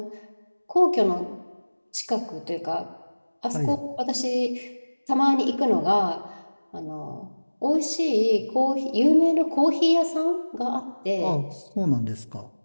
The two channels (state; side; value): inverted; both; correlation -1.00